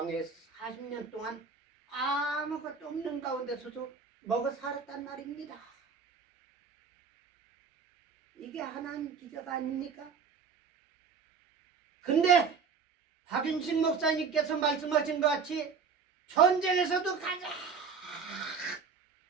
40년 동안 아무것도 없는 가운데서도 먹어 살았단 말입니다. 이게 하나님 기적 아닙니까? 근데 박윤식 목사님께서 말씀하신 것 같이 전쟁에서도 가장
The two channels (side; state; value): left; quieter; 5.7 dB